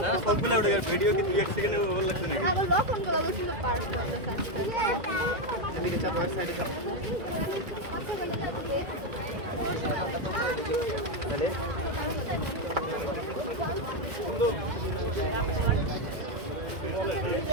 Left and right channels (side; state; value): left; late; 2.0 ms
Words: না সবগুলো উঠে গেছে। ভিডিও কি 2-1 সেকেন্ডে ওভার লাগছে নাকি? বন্ধু